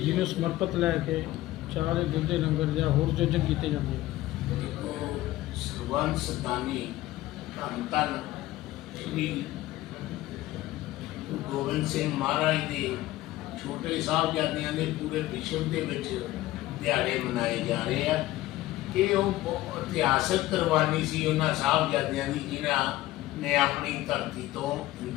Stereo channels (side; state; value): right; quieter; 16.5 dB